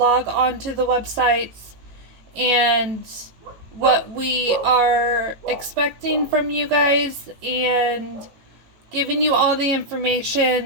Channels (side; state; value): left; late; 18 ms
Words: on to the websites, and what we are expecting from you guys, and giving you all the